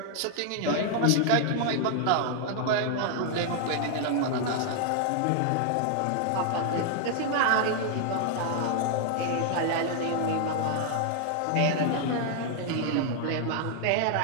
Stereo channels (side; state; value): both; different; correlation 0.00